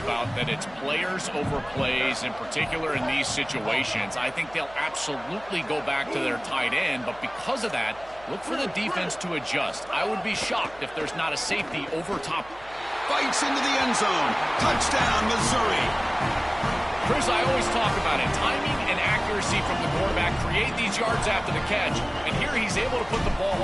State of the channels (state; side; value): noise; right; hum, 23 dB below the sound